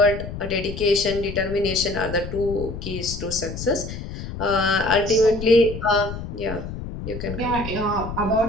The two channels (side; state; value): left; noise; rumble, 8 dB below the sound